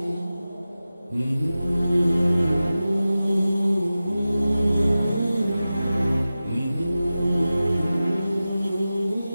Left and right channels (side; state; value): both; inverted; correlation -0.95